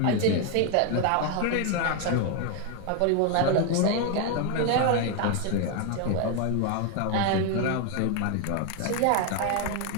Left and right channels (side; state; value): both; different; correlation 0.01